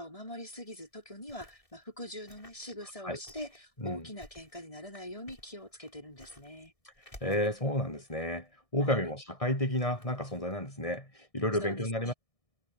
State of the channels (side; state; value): right; late; 1.6 ms